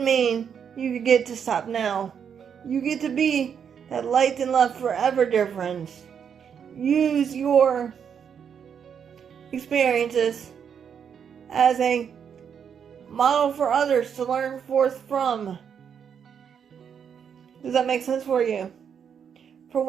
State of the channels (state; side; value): quieter; left; 7.6 dB